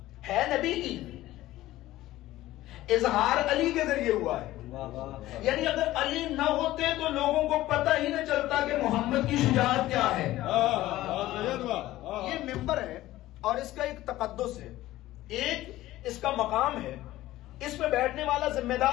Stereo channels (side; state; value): right; quieter; 15.9 dB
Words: ہے نبی کی، اظہار علی کے ذریعے ہوا ہے. یعنی اگر علی نہ ہوتے تو لوگوں کو پتہ ہی نہ چلتا کہ محمد کی شجاعت کیا ہے. یہ ممبر ہے اور اس کا ایک تقدس ہے، ایک اس کا مقام ہے. اس پہ بیٹھنے والا ذمہ